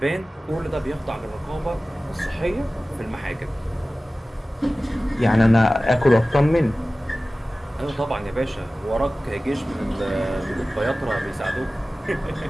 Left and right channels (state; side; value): normal; both; correlation 0.97